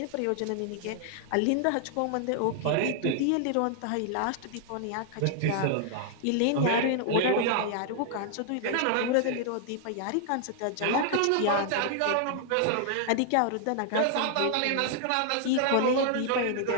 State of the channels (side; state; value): both; different; correlation 0.00